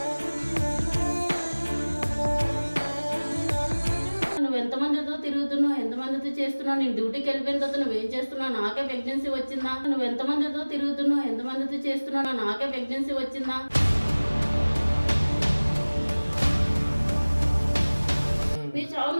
నువ్వు ఎంతమందితో తిరుగుతున్నావు, ఎంతమందితో చేస్తున్నావు, నేను డ్యూటీకి వెళ్ళిపోయిన తర్వాత నువ్వేం చేస్తున్నావు, నాకే ప్రెగ్నెన్సీ వచ్చిందా? నువ్వు ఎంతమందితో తిరుగుతున్నావు, ఎంతమందితో చేస్తున్నావు, నాకే ప్రెగ్నెన్సీ వచ్చిందా? నీ చావు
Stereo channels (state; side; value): inverted; both; correlation -1.00